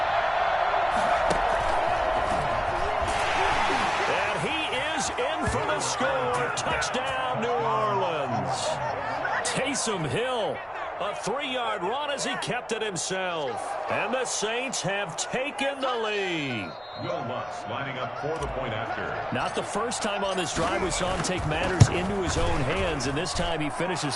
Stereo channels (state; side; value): identical; both; correlation 1.00